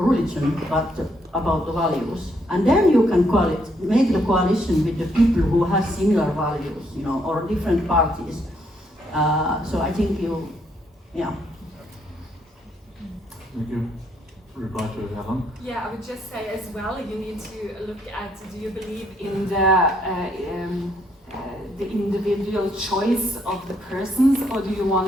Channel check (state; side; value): normal; both; correlation 0.72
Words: but about the values. And then you can make the coalition with the people who have similar values, you know, or different parties. So I think yeah. Thank you. Reply to Helen. Yeah, I would just say as well, you need to look at, do you believe in the individual choice of the persons, or do you